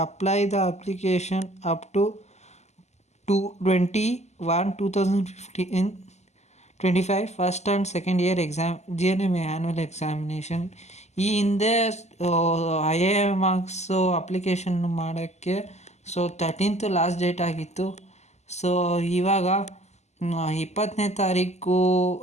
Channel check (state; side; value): late; right; 0.33 ms